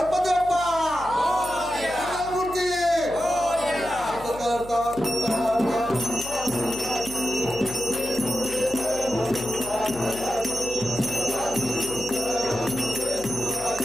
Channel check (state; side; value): noise; left; hum, 16 dB below the sound